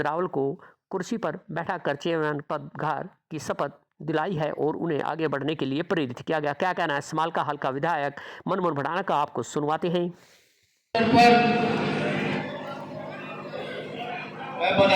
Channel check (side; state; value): both; identical; correlation 1.00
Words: रावल को कुर्सी पर बैठाकर चेयरमैन पदभार की शपथ दिलाई है और उन्हें आगे बढ़ने के लिए प्रेरित किया गया। क्या कहना है समालका हल्का विधायक मनमोहन बढ़ाना का, आपको सुनवाते हैं। मैं